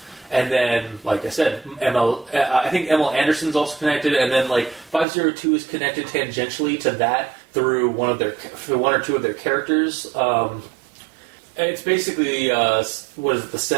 And then, like I said, I think ML Anderson's also connected, and then like 502 is connected tangentially to that through one or two of their characters. It's basically what is it, the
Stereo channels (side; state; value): left; drops out; at 5.1 s